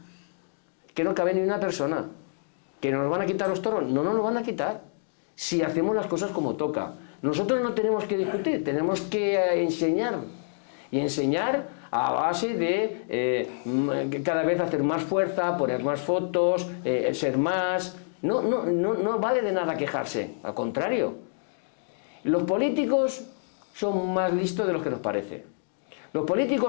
que no cabe ni una persona. ¿Que nos van a quitar los toros? No nos lo van a quitar si hacemos las cosas como toca. Nosotros no tenemos que discutir, tenemos que enseñar. Y enseñar a base de cada vez hacer más fuerza, poner más fotos, ser más. No vale de nada quejarse, al contrario. Los políticos son más listos de lo que nos parece. Los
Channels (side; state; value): right; silent; digital silence